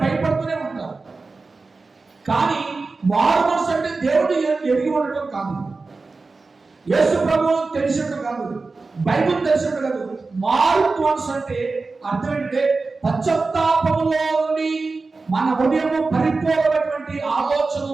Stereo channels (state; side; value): quieter; left; 3.9 dB